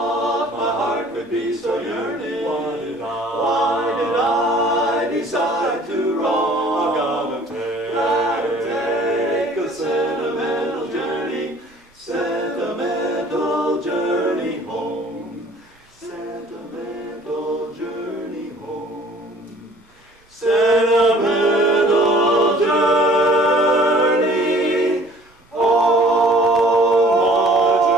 My heart could be so yearning. Why did I decide to roam? I've gotta Take a sentimental journey home. Sentimental journey home. Sentimental journey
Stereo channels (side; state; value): both; normal; correlation 0.52